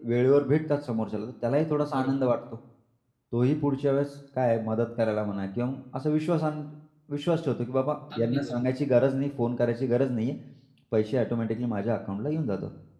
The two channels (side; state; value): both; identical; correlation 1.00